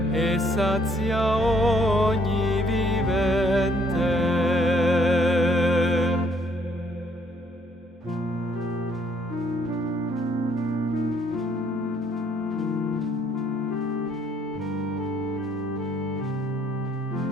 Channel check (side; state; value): both; normal; correlation 0.66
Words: e sazia ogni vivente.